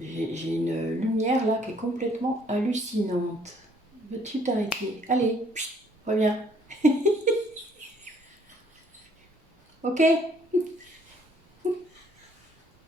une lumière, là, qui est complètement hallucinante. Veux-tu t'arrêter? Allez, reviens. Ok?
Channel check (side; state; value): both; normal; correlation 0.63